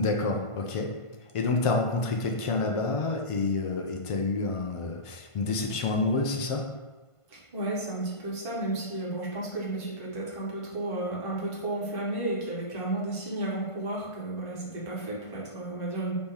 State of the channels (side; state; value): right; late; 1.5 ms